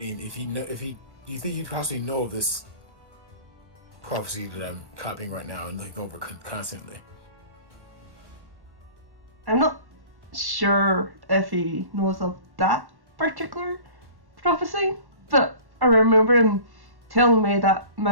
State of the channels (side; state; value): left; late; 1.1 ms